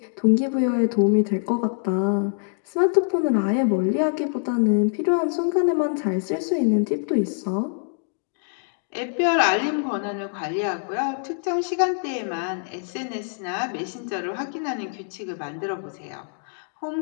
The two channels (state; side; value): silent; right; digital silence